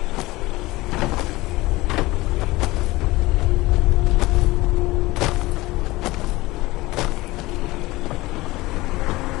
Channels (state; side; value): quieter; right; 19.8 dB